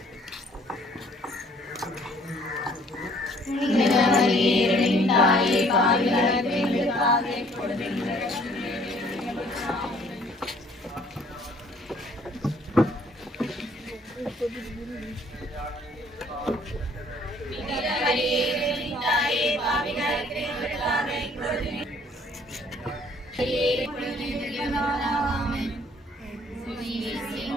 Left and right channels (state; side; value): normal; both; correlation 0.59